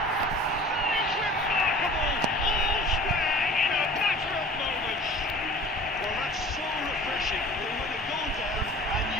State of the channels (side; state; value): both; normal; correlation 0.44